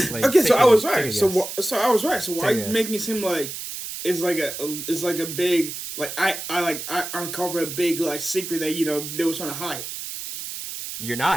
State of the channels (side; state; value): right; noise; hiss, 8 dB below the sound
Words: Like, okay, so I was right. So I was right. So why are you making it seem like it's like a big like I uncover a big like secret that they were trying to hide. You're